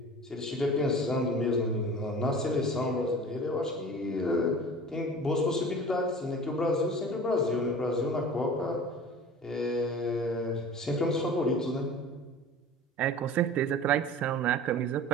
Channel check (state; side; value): normal; both; correlation 0.40